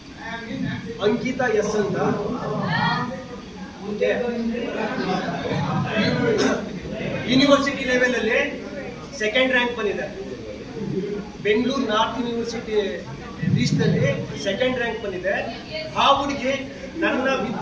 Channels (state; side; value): identical; both; correlation 1.00